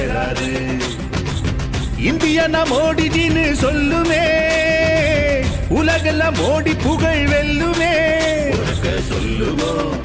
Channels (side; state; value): both; identical; correlation 1.00